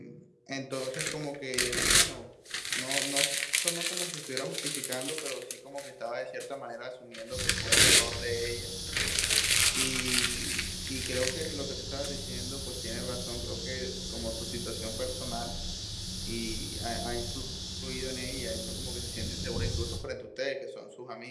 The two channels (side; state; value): both; identical; correlation 1.00